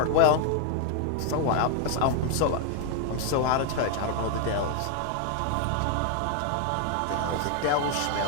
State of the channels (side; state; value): both; different; correlation 0.00